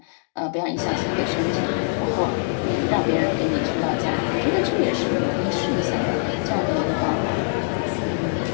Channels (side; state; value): right; silent; digital silence